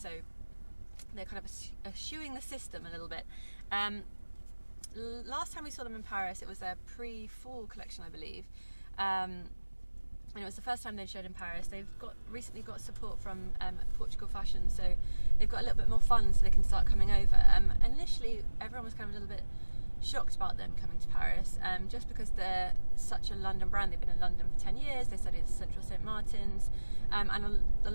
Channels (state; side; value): inverted; both; correlation -1.00